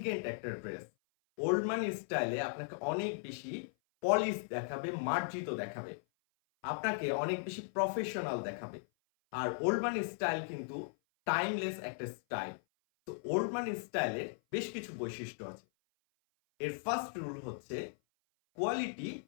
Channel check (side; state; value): right; silent; 53 dB below the other